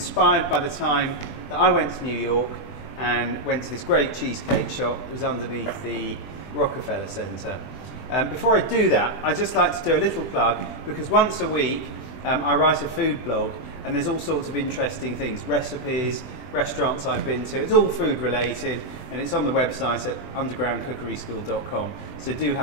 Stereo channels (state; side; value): late; right; 20 ms